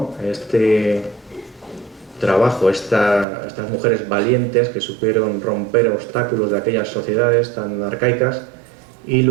trabajo estas mujeres valientes que supieron romper obstáculos de aquellas sociedades tan arcaicas y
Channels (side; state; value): left; drops out; at 3.2 s